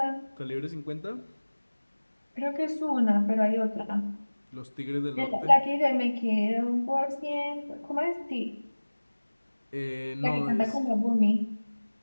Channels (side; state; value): both; inverted; correlation -1.00